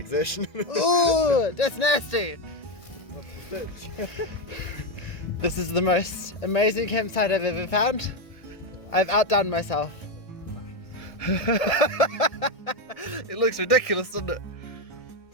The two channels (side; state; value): right; late; 1.6 ms